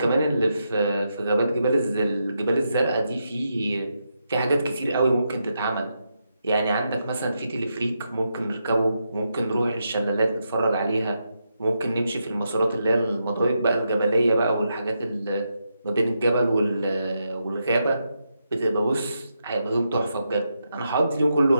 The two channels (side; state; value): both; inverted; correlation -0.84